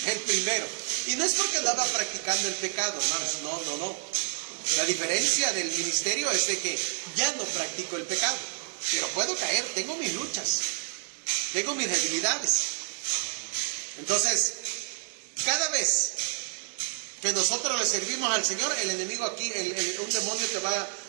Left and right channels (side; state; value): left; silent; 59 dB below the other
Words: El primero. Y no es porque andaba practicando el pecado, hermanos, no. La diferencia del ministerio es de que ya no practico el pecado, pero puedo caer, tengo mis luchas, tengo mis debilidades. Entonces, cada vez que nosotros le servimos al Señor, el enemigo aquí, un demonio te va